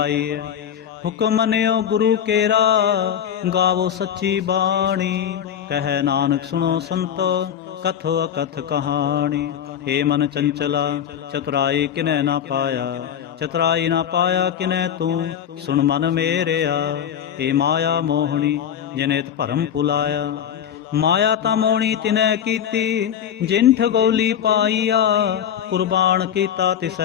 ਹੁਕਮ ਮੰਨਿਓ ਗੁਰੂ ਕੇਰਾ ਗਾਵੋ ਸੱਚੀ ਬਾਣੀ। ਕਹਿ ਨਾਨਕ ਸੁਣੋ ਸੰਤੋ ਕਥੋ ਅਕਥ ਕਹਾਣੀ। ਏ ਮਨ ਚੰਚਲਾ ਚਤੁਰਾਈ ਕਿਨੈ ਨਾ ਪਾਇਆ। ਚਤੁਰਾਈ ਨਾ ਪਾਇਆ ਕਿਨੈ ਤੂੰ ਸੁਣ ਮਨ ਮੇਰਿਆ। ਏ ਮਾਇਆ ਮੋਹਣੀ ਜਿਨੇ ਤ ਭਰਮ ਭੁਲਾਇਆ। ਮਾਇਆ ਤਾਂ ਮੋਹਣੀ ਤਿਨੈ ਕੀਤੀ ਜਿਨ ਠਗੋਲੀ ਪਾਈਆ। ਕੁਰਬਾਨ ਕੀਤਾ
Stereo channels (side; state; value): right; quieter; 9.1 dB